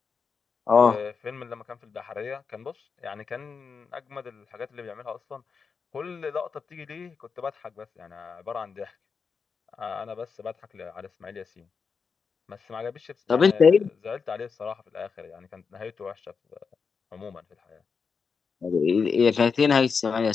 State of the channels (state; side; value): quieter; right; 5.5 dB